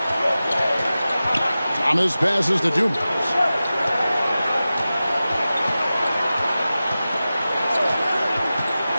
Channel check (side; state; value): both; inverted; correlation -0.95